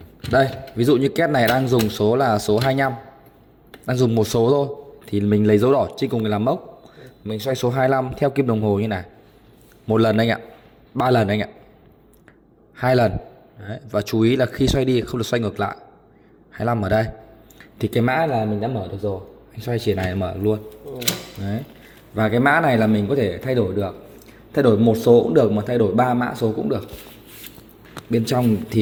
Đây, ví dụ như két này đang dùng số là số 25, đang dùng một số thôi, thì mình lấy dấu đỏ trên cùng để làm mốc. Mình xoay số 25 theo kim đồng hồ như này. Một lần anh ạ, 3 lần anh ạ, 2 lần. Đấy. Và chú ý là khi xoay đi không được xoay ngược lại. 25 ở đây. Thì cái mã là mình đã mở được rồi. Anh xoay chỉ này là mở được luôn. Đấy. Và cái mã này là mình có thể thay đổi được. Thay đổi một số cũng được, mà thay đổi 3 mã số cũng được. Bên trong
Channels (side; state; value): both; identical; correlation 1.00